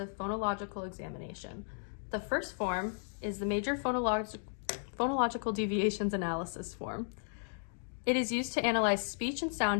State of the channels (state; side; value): silent; right; digital silence